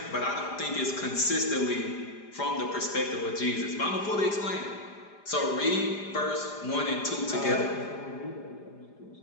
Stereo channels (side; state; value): right; late; 4.9 ms